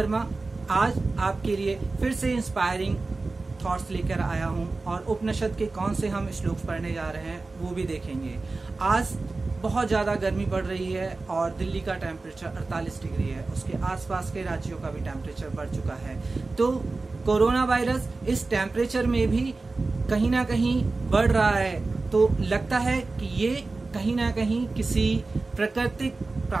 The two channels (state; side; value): quieter; left; 3.6 dB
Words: आज आपके लिए फिर से इंस्पायरिंग थॉट्स लेकर आया हूं और उपनिषद के कौन से हम श्लोक पढ़ने जा रहे हैं वो भी देखेंगे। आज बहुत ज़्यादा गर्मी पड़ रही है और दिल्ली का टेम्परेचर 48 डिग्री है, उसके आसपास के राज्यों का भी टेम्परेचर बढ़ चुका है। तो कोरोना वायरस इस टेम्परेचर में भी कहीं ना कहीं बढ़ रहा है, तो लगता है कि ये कहीं ना कहीं किसी